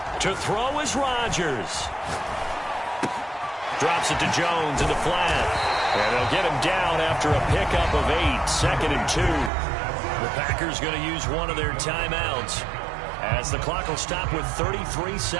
To throw is Rodgers. Drops it to Jones in the flat. And they'll get him down after a pickup of 8, 2nd and 2. The Packers going to use one of their timeouts as the clock will stop with 33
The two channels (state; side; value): drops out; left; at 9.5 s